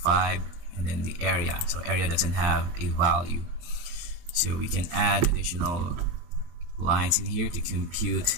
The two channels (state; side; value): late; left; 23 ms